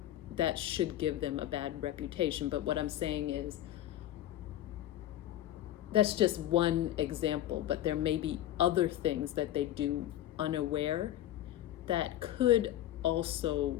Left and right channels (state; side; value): quieter; right; 13.1 dB